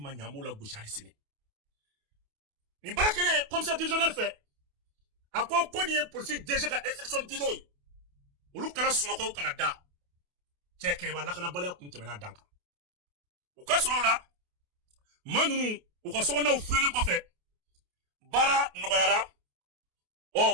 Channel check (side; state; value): left; late; 28 ms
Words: ma ɲɛ an b'o la gosi hali sini nin baara kɛlen commissaire divisionnaire fɛ a ko nin ye polisi DG ka instruction dilen ye olu kana sunɔgɔ u kana da cɛ kɛɲɛba lakanabaliya kun tɛmɛna dan kan u ka sɔrɔ o la maa ninnu u ka sokɔnɔnaw filɛlen kɔfɛ baara nɔgɔyara